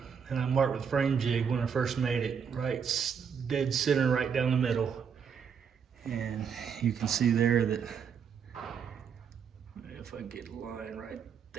And I marked with frame jig when I first made it, right dead center, right down the middle. And you can see there that, if I get a line right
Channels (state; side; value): quieter; left; 6.9 dB